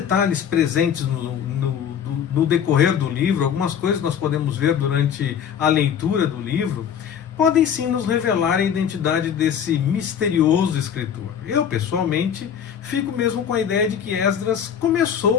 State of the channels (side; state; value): right; quieter; 8.3 dB